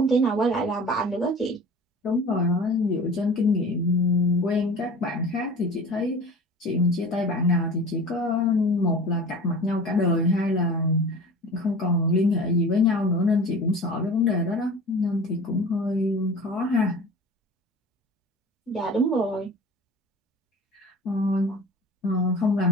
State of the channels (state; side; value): normal; both; correlation 0.39